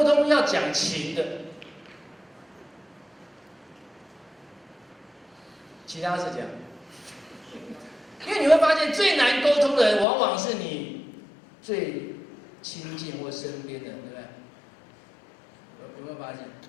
通要讲情的？其他是这样，因为你会发现最难沟通的人，往往是你最亲近或身边的人，对不对？有没有发现？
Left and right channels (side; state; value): right; drops out; at 10.1 s